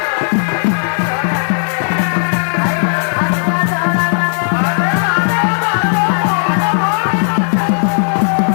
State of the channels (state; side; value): silent; right; digital silence